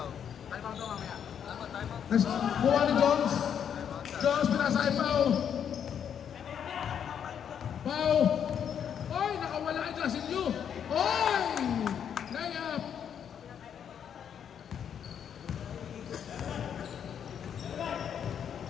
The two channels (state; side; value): quieter; right; 8.4 dB